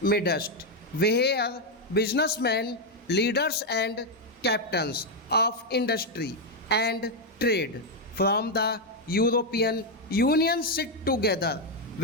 midst, where businessmen, leaders, and captains of industry and trade from the European Union sit together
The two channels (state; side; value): normal; both; correlation 0.03